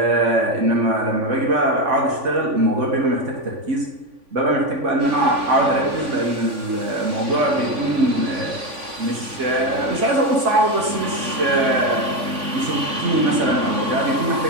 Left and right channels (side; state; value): left; late; 3.5 ms